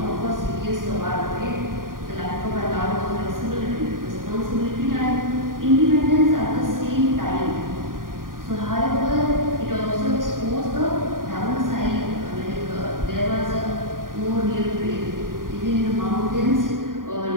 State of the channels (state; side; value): late; left; 0.90 ms